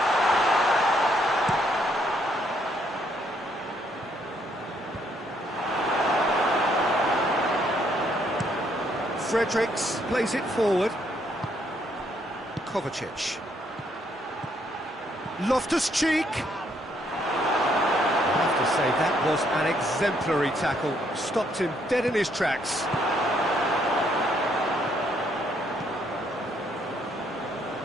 Fredericks plays it forward. Kovacic. Loftus-Cheek. I have to say, that was an exemplary tackle. Stopped him dead in his tracks.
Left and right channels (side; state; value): both; normal; correlation 0.70